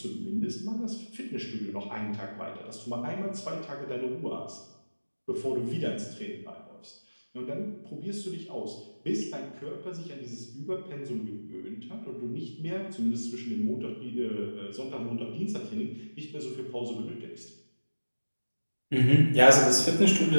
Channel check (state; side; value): inverted; both; correlation -1.00